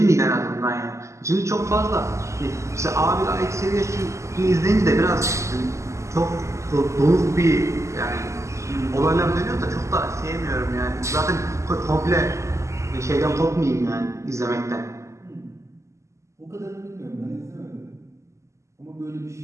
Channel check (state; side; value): late; left; 0.14 ms